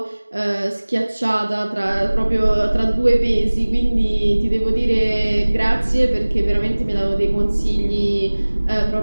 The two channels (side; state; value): both; inverted; correlation -1.00